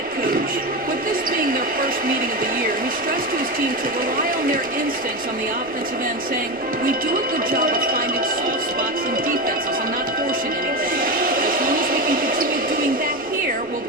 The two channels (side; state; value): left; noise; rumble, 24 dB below the sound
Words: coach. With this being their first meeting of the year, he stressed to his team to rely on their instincts on the offensive end, saying, "We do a good job of finding soft spots in defenses and not forcing anything. As long as we can continue doing that here, we'll